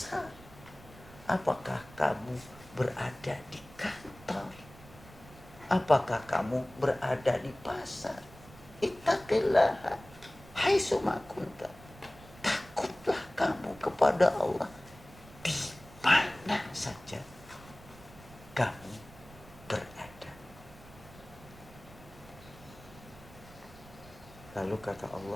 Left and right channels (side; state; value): right; noise; rumble, 20 dB below the sound